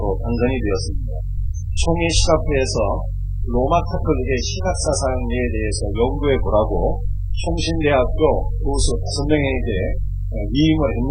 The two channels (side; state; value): both; identical; correlation 1.00